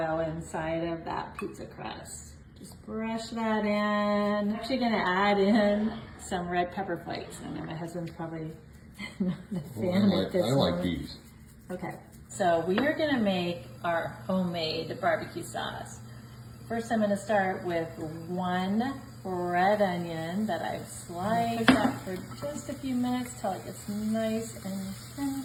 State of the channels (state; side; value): identical; both; correlation 1.00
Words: inside of that pizza crust. Just brush that in. I'm actually gonna add in some red pepper flakes. I know my husband's probably not a fan at this I moment. like these. Okay, so we are gonna make our homemade barbecue sauce. First, I'm gonna start with one red onion that I've sliced. Cook that for just a few minutes till it gets nice and